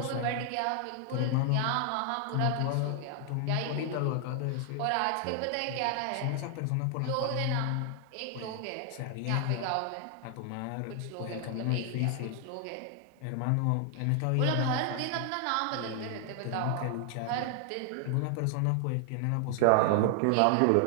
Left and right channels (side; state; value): both; different; correlation 0.00